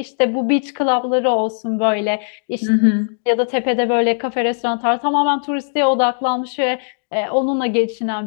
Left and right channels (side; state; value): right; silent; digital silence